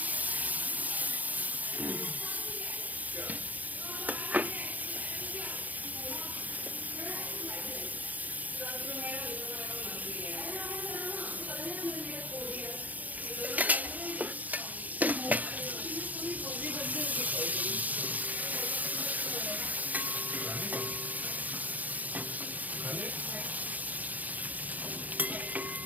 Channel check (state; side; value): late; left; 0.079 ms